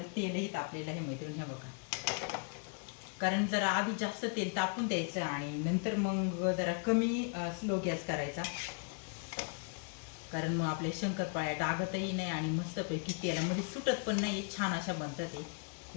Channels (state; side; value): quieter; right; 39.7 dB